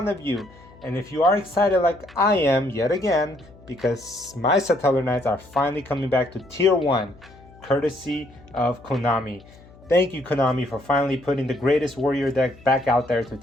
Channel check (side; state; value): left; noise; hum, 23 dB below the sound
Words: of you. And if you are excited like I am yet again, because my Satellarknights are finally coming back to tier 1 courtesy of Konami. Thank you, Konami, for finally putting the greatest warrior deck back out there to